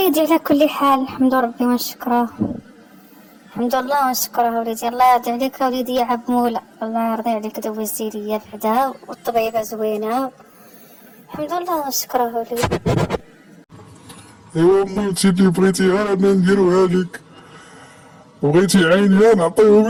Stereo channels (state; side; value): identical; both; correlation 1.00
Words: على كل حال الحمد ربي ونشكره. الحمد لله ونشكره وليدي. الله يرضي عليك وليدي يا عب مولا، الله يرضي عليك دوزتي ليا بعدا والطبيبة زوينة. الحمد لله ونشكره وليدي. ايوا مامتي اللي بغيتيها انا نديروها لك، بغيتي عينيها نعطيهم